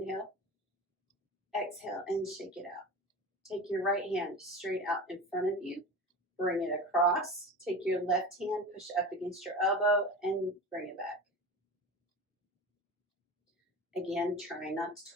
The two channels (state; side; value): normal; both; correlation 0.31